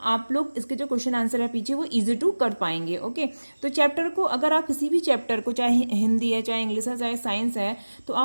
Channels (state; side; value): inverted; both; correlation -1.00